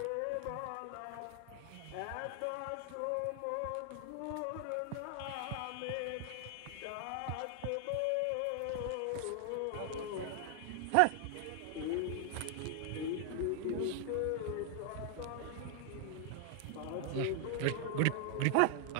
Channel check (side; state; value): both; different; correlation 0.00